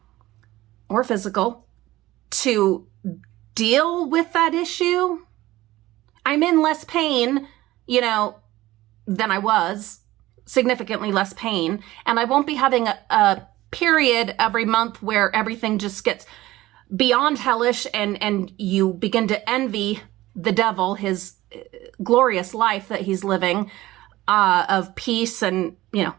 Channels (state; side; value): quieter; left; 17.0 dB